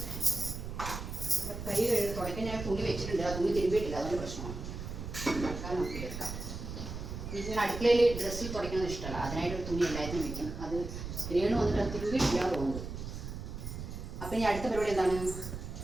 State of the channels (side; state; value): right; noise; rumble, 7 dB below the sound